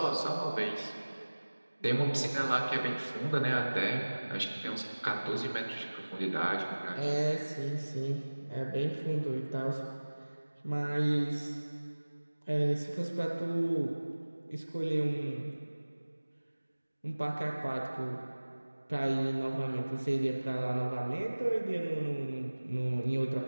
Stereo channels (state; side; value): inverted; both; correlation -1.00